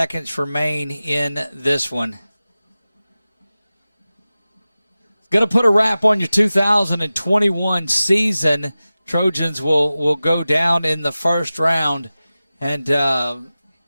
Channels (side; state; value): both; inverted; correlation -0.96